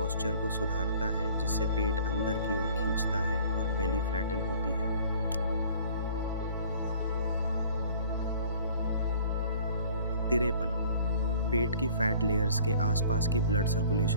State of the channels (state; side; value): inverted; both; correlation -0.50